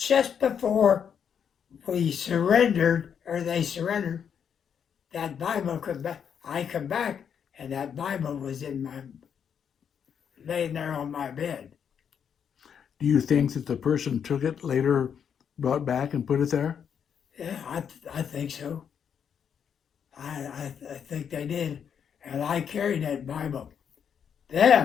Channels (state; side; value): quieter; right; 7.7 dB